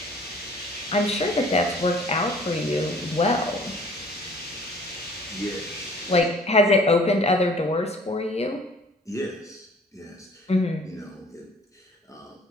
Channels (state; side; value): normal; both; correlation 0.53